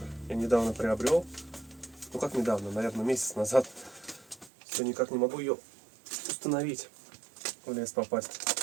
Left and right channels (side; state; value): left; drops out; at 4.5 s